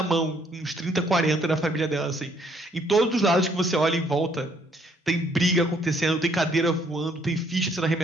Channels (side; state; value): both; normal; correlation 0.66